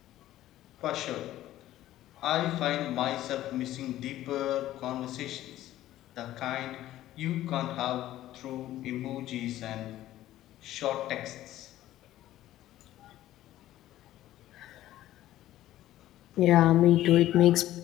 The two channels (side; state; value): right; quieter; 14.1 dB